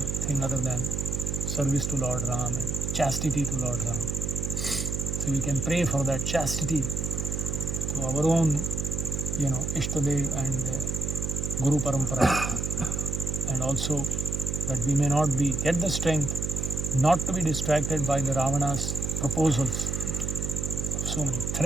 other than service to Lord Ram and chastity to Lord Ram. So we can pray for that chastity to our own, Ishtadev and Guru Parampara, and also that we may not get the strength not to be distracted by the Ravana's proposals. So many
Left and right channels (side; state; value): right; noise; hum, 2 dB below the sound